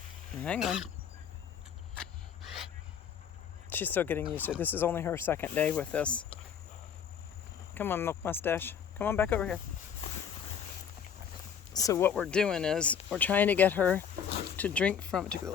hang on, she's still getting used to it. This is only her second day with this. Come on, Milk Mustache, come on back over here. So what we're doing is we're trying to get her to drink from, took the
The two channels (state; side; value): quieter; right; 7.8 dB